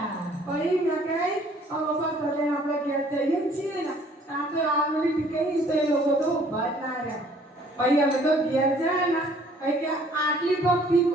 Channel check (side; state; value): both; normal; correlation 0.58